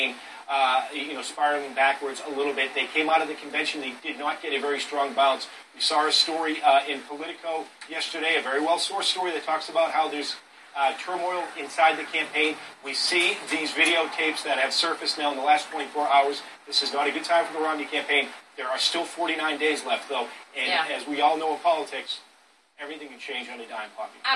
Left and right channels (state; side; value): identical; both; correlation 1.00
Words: spiraling backwards a little bit. They came out of the convention. They did not get a very strong bounce. We saw a story in Politico yesterday, a very well-sourced story that talks about how there's turmoil inside the campaign. We see these videotapes that have surfaced now in the last 24 hours. This is not a good time for the Romney campaign. There are still 49 days left, though. And as we all know in politics, everything can change on a dime, Poppy.